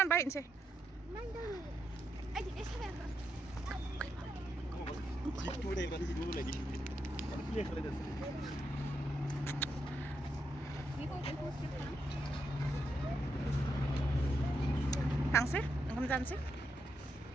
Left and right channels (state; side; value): normal; both; correlation 0.82